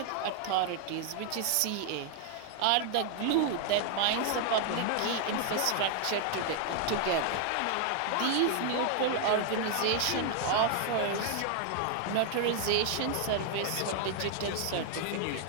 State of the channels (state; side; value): different; both; correlation 0.00